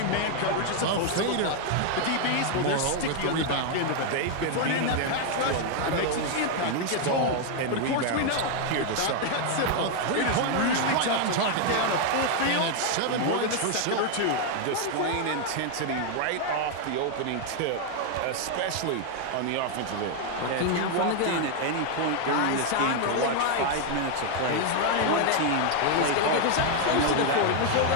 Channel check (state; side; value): different; both; correlation 0.00